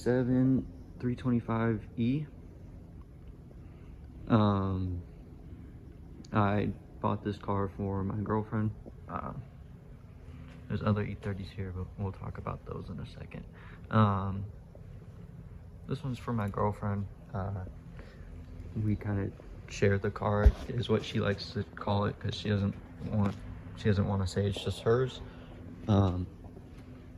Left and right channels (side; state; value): both; identical; correlation 1.00